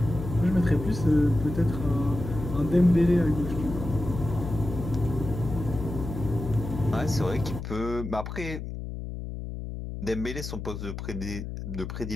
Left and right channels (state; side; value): noise; left; hum, 7 dB below the sound